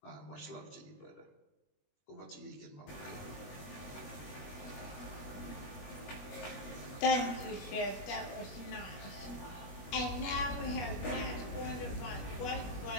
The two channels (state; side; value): late; right; 21 ms